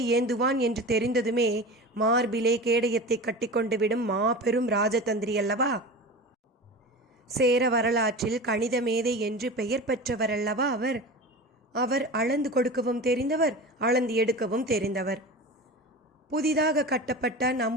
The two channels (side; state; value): both; normal; correlation 0.31